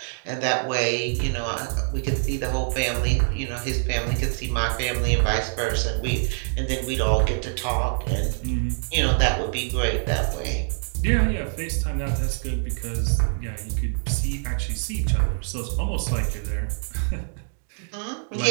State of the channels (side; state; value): left; silent; 62 dB below the other